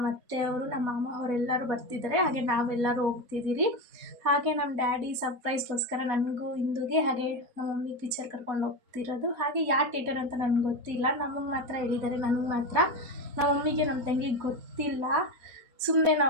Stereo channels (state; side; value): late; left; 4.1 ms